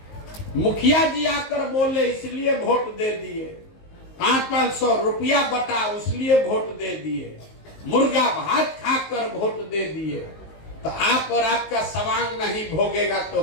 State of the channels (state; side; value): late; right; 19 ms